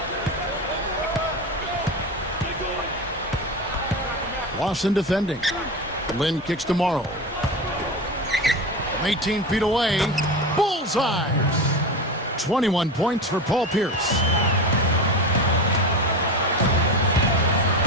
Lawson defending. Lynn kicks to Morrow. From 18 feet away. Bullseye! 21 points for Paul Pierce.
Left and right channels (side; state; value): both; normal; correlation 0.24